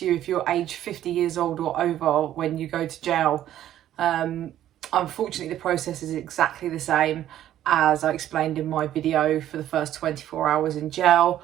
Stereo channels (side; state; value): left; quieter; 12.1 dB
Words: you if you're age 50 years old or over when you go to jail. Um, Unfortunately, the process is exactly the same as I explained in my video for the first 24 hours in jail.